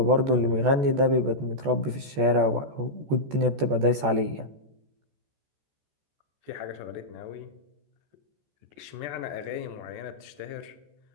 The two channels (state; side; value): late; left; 14 ms